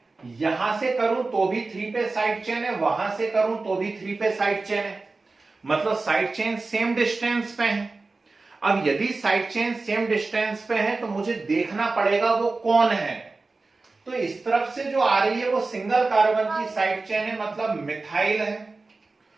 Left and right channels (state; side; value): quieter; left; 3.6 dB